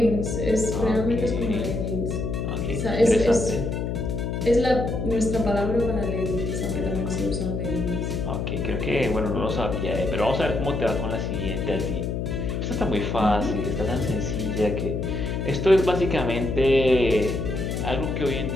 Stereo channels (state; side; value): noise; left; hum, 2 dB below the sound